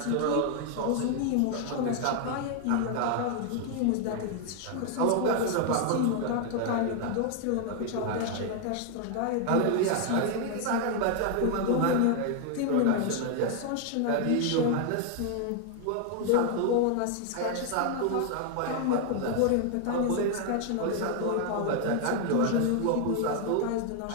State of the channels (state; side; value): different; both; correlation 0.00